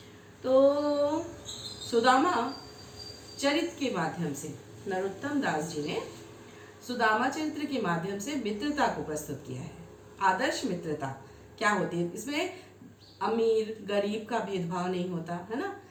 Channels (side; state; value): both; identical; correlation 1.00